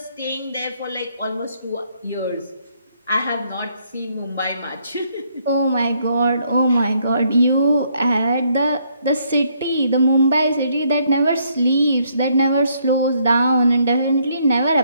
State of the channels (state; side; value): inverted; both; correlation -0.70